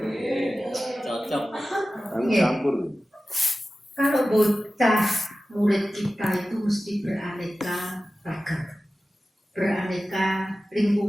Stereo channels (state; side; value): normal; both; correlation 0.95